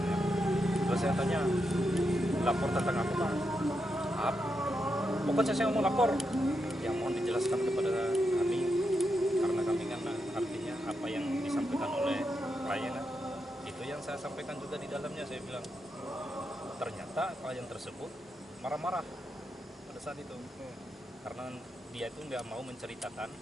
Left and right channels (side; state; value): both; normal; correlation 0.85